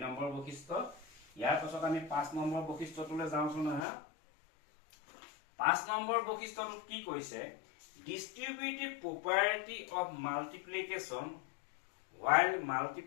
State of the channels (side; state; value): right; drops out; at 3.9 s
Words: নম্বৰ বৈশিষ্ট্য ইয়াৰ পাছত আমি 5 নম্বৰ বৈশিষ্ট্যটোলৈ যাওঁচোন হা 5 নম্বৰ বৈশিষ্ট্যটো কি কৈছে distributive property of multiplication while